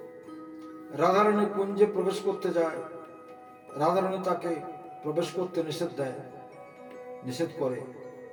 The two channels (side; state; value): both; identical; correlation 1.00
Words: রাধারানী কুঞ্জে প্রবেশ করতে যায়। রাধারানী তাকে প্রবেশ করতে নিষেধ করে।